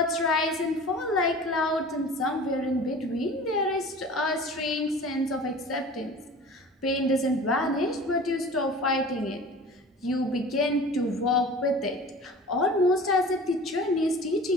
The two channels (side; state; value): both; normal; correlation 0.40